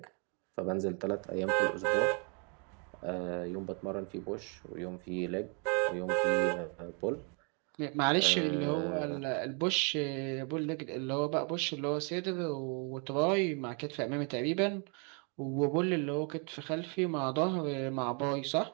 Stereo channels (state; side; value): quieter; left; 36.7 dB